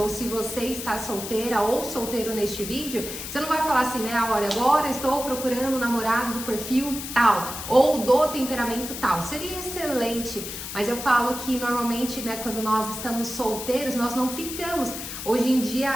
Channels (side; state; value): left; noise; hiss, 8 dB below the sound